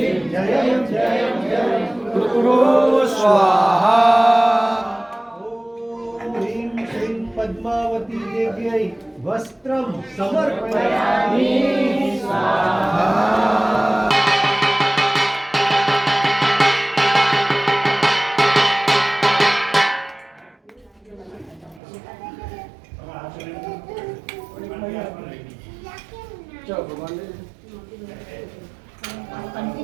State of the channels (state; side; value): drops out; left; at 21.8 s